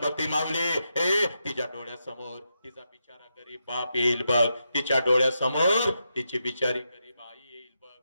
ती माऊली. तिच्या डोळ्यासमोर तिचा बिचारा गरीब बाप येईल बघ, तिच्या डोळ्यासमोर तिची बिचारी गरीब आई येईल बघ.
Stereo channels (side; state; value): both; inverted; correlation -0.85